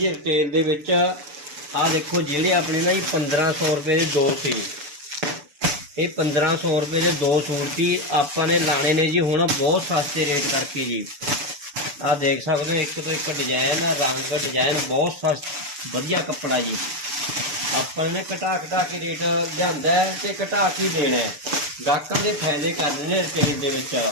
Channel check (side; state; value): left; late; 6.9 ms